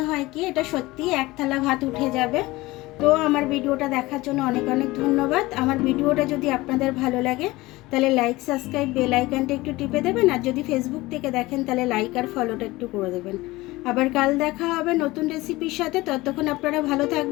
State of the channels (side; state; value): right; quieter; 20.0 dB